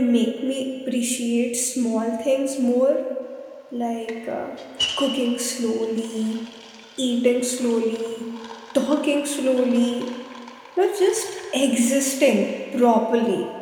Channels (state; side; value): identical; both; correlation 1.00